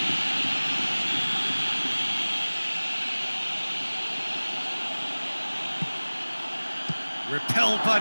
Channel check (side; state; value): both; inverted; correlation -1.00